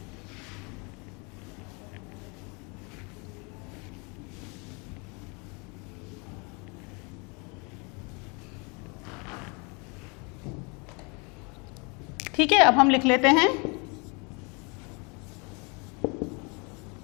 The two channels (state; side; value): quieter; right; 31.2 dB